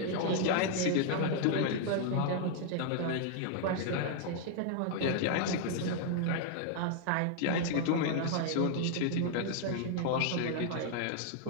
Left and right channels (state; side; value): different; both; correlation 0.00